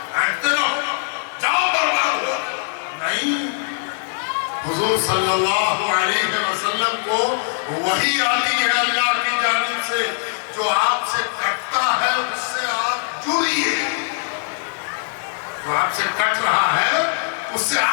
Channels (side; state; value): right; silent; digital silence